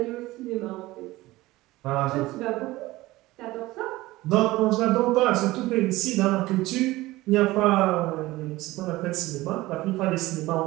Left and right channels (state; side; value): quieter; left; 18.5 dB